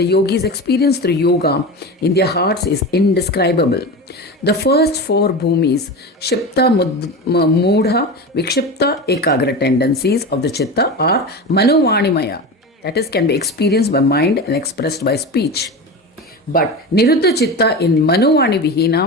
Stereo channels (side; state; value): both; normal; correlation 0.26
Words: yogis experience through yoga in their hearts is indescribable. The first four bhumis, Shipta, Mudha, Vikshipta, Ekagra tendencies of the Chitta are Manovanimaya, that is, can be experienced by mind and expressed by speech. But Niruddha Chitta in Manovani